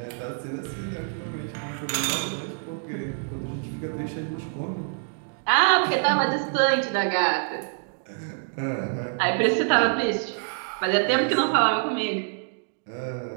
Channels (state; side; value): silent; left; 61 dB below the other